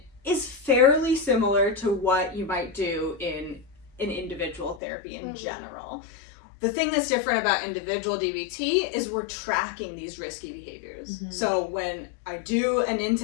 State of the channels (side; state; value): right; drops out; at 4.8 s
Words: is fairly similar to what you might do in an individual therapy in general. The thing that's different about individual DBT is we're tracking these risky behaviors. So when I do an